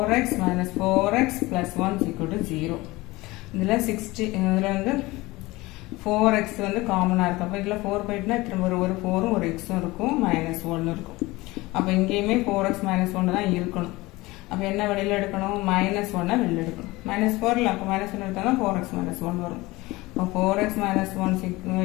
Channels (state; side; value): quieter; right; 20.8 dB